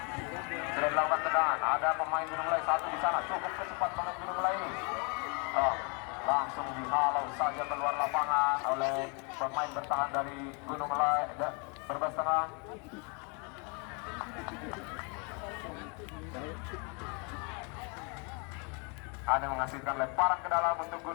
Sudah dilakukan tendangan, ada pemain Gunung Kelai satu di sana, cukup cepat pemain Gunung Kelai ini. Langsung dihalau saja keluar lapangan oleh pemain bertahan dari Gunung Kelai berbas tengah. Ada menghasilkan lemparan ke dalam untuk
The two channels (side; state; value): right; quieter; 34.2 dB